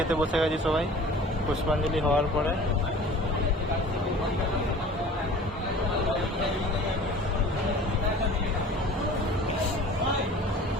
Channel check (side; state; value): both; normal; correlation 0.44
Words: বসে গেছি সবাই পুষ্পাঞ্জলি হওয়ার পরে।